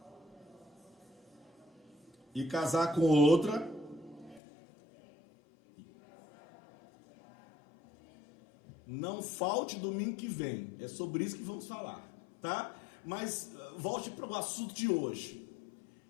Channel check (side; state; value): right; drops out; at 4.4 s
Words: e casar com outra, não falte domingo que vem. É sobre isso que vamos falar, tá? Mas volte para o assunto de hoje.